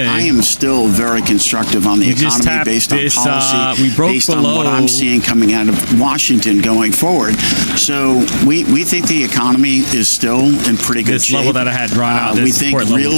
I am still very constructive on the economy based on policy, based on what I'm seeing coming out of Washington going forward. So we think the economy is still in pretty good shape. This level that I had drawn out, we think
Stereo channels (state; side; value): inverted; both; correlation -1.00